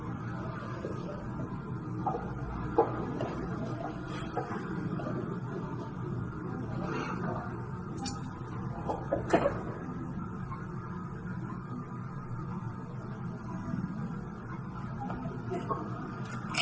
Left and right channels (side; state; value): both; identical; correlation 1.00